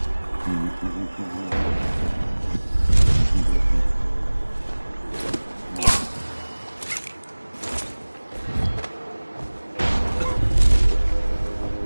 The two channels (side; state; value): both; inverted; correlation -1.00